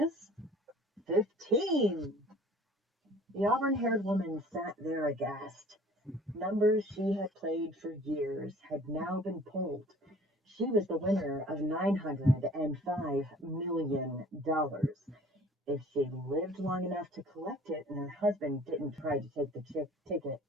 15. The auburn-haired woman sat there aghast. Numbers she had played for years had now been pulled. She was the winner of $905 million if she lived long enough to collect it and her husband didn't try to take the ticket.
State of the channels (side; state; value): both; normal; correlation 0.50